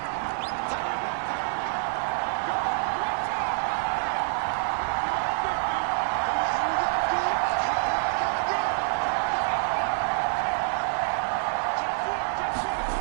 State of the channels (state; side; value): silent; left; digital silence